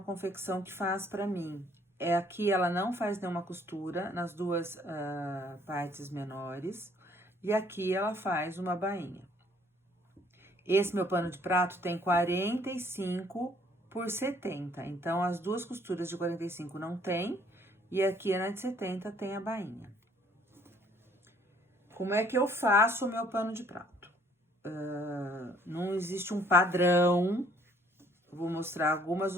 confecção que faz para mim. Aqui ela não faz nenhuma costura nas duas partes menores. E aqui ela faz uma bainha. Esse meu pano de prato tem 45 por 70. Então, as duas costuras de 45 não tem. E aqui na de 70 tem a bainha. Como é que eu faço o meu pano de prato? Não existe um padrão. Eu vou mostrar algumas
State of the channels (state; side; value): normal; both; correlation 0.61